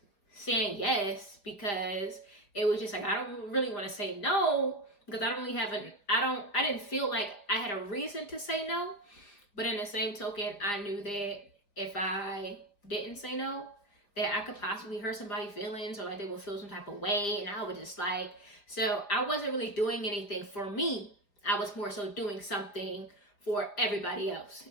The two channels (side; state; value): right; late; 4.9 ms